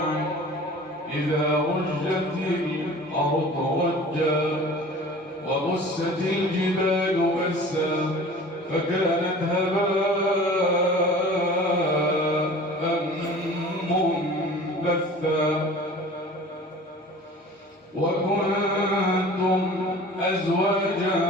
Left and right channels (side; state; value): both; normal; correlation 0.42